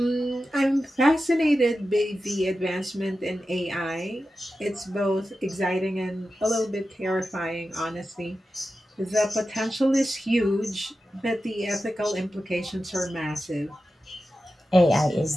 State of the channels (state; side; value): normal; both; correlation 0.92